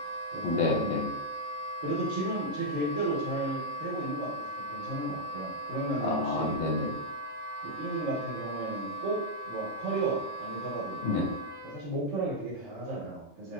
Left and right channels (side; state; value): both; normal; correlation -0.04